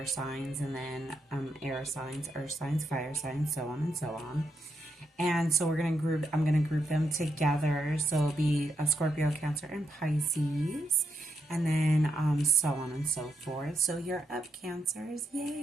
signs, and then air signs, earth signs, fire signs, so on and so on. And so I'm gonna group them together. So it'll be a Scorpio, Cancer, and Pisces, and then so on and so forth. So you're up, Cancers,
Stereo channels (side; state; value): both; normal; correlation 0.81